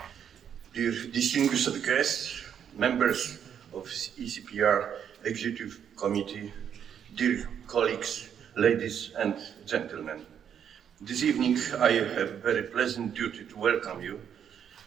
dear distinguished guests, members of ECPR Executive Committee, dear colleagues, ladies and gentlemen. This evening I have a very pleasant duty to welcome you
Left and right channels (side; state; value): left; quieter; 8.5 dB